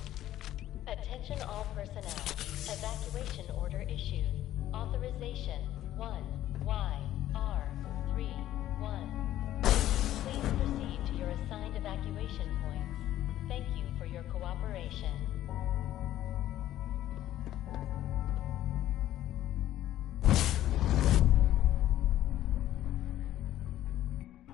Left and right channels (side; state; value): right; quieter; 13.1 dB